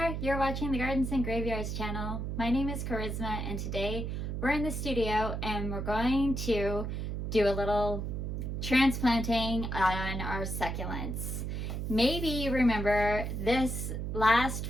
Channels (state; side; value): noise; right; hum, 3 dB below the sound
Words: there, you're watching the Gardens and Graveyards channel. My name is Charisma and today we're in the studio and we're going to do a little transplanting on our succulents. Maybe you remember this last